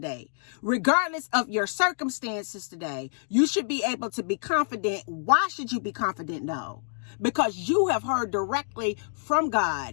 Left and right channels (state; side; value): silent; right; digital silence